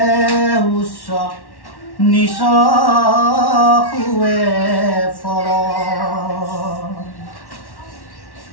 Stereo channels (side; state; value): right; late; 1.1 ms